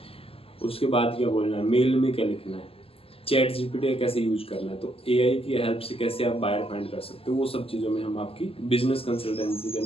उसके बाद क्या बोलना है, मेल में क्या लिखना है, चैट GPT कैसे यूज करना है, तो AI की हेल्प से कैसे आप बायर फाइंड कर सकते हो, वो सब चीज़ों में हम आपकी बिजनेस कंसल्टेंसी के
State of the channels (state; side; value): late; right; 0.28 ms